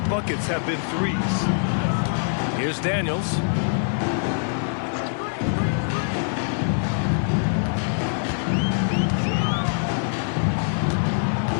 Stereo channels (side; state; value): right; silent; digital silence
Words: buckets have been 3s. Here's Daniels.